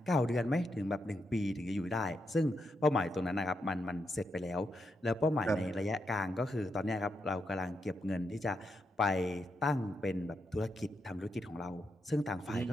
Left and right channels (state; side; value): normal; both; correlation 0.83